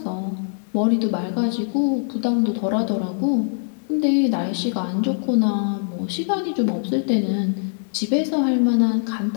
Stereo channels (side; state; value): right; silent; digital silence